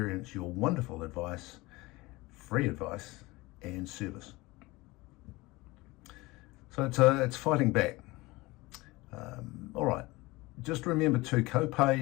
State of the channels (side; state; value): right; quieter; 21.7 dB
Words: your wonderful advice, free advice, and service. So it's fighting back. All right. Just remember too,